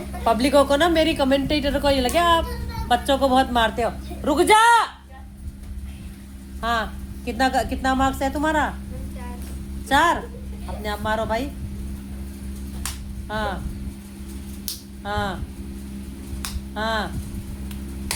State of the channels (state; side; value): identical; both; correlation 1.00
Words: पब्लिकों को ना, मेरी कमेंटेटर को ये लगे आप बच्चों को बहुत मारते हो। रुक जा। हाँ कितना मार्क्स है तुम्हारा? 4। अपने आप मारो भाई। हाँ हाँ हाँ